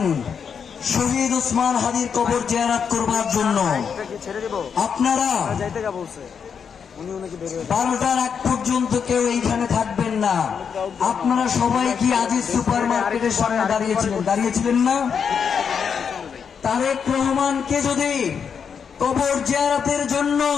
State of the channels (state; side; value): quieter; right; 6.8 dB